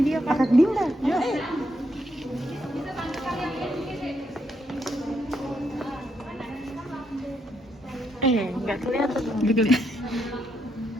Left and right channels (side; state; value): both; normal; correlation 0.78